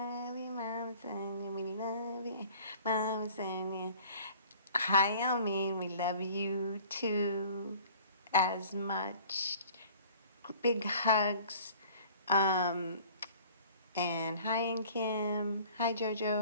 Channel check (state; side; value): inverted; both; correlation -0.50